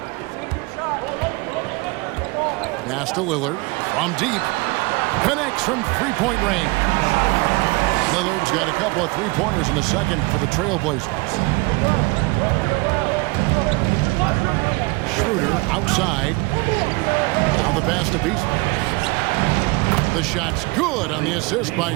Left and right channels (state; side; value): quieter; left; 25.3 dB